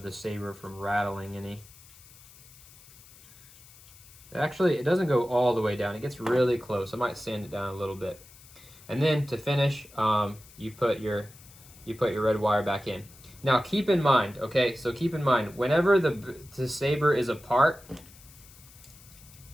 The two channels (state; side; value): noise; left; hiss, 22 dB below the sound